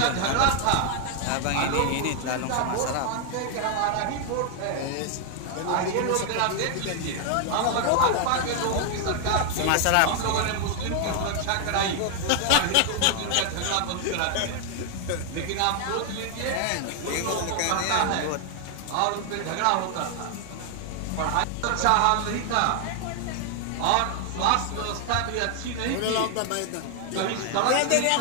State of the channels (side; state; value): both; different; correlation 0.00